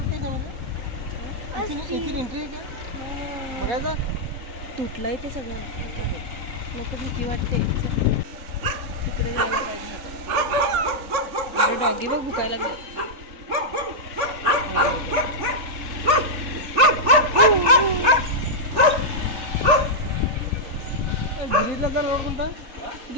तुटलंय ते सगळं. नको भीती वाटते. तिकडे जायला पाहिजे आता. अरे डॉगी बघ भुकायला लागले. गिरीजला जर रोड कोणता?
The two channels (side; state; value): left; late; 3.4 ms